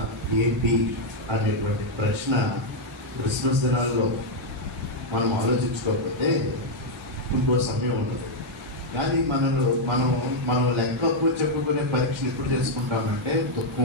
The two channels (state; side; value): normal; both; correlation 0.00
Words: ఏంటి అనేటువంటి ప్రశ్న క్రిస్మస్ దినాల్లో మనం ఆలోచించుకోకపోతే ఇంకో సమయం ఉండదు. కానీ మనం లెక్క అప్పు చెప్పుకునే పరీక్షలు ఎప్పుడు చేసుకుంటామంటే